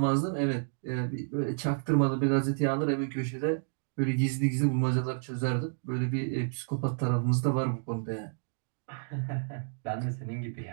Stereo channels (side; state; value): left; silent; digital silence